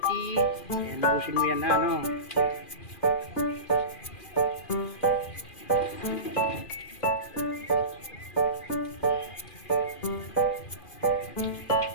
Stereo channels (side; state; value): right; late; 2.4 ms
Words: Ayan, busin mo yan na, no?